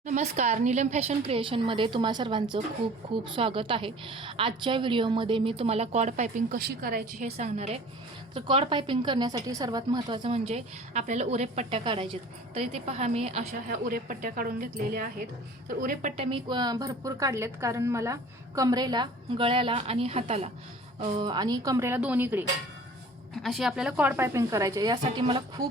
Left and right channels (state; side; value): normal; both; correlation 0.46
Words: नमस्कार, नीलम फॅशन क्रिएशनमध्ये तुम्हा सर्वांचं खूप खूप स्वागत आहे। आजच्या व्हिडिओमध्ये मी तुम्हाला कॉर्ड पायपिंग कशी करायची हे सांगणार आहे। तर कॉर्ड पायपिंग करण्यासाठी सर्वात महत्त्वाचं म्हणजे आपल्याला उरेप पट्ट्या काढायच्यात। तर इथे पहा, मी अशा ह्या उरेप पट्ट्या काढून घेतलेल्या आहेत। तर उरेप पट्ट्या मी भरपूर काढलेत, कारण मला कमरेला, गळ्याला आणि हाताला आणि कमरेला दोन्हीकडे अशी आपल्याला कॉर्ड पायपिंग करायची। यासाठी मला